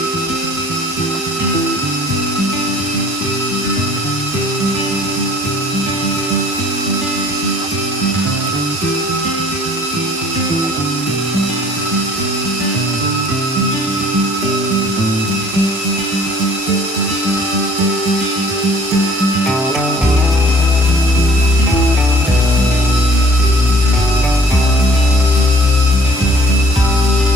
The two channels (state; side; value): normal; both; correlation 0.53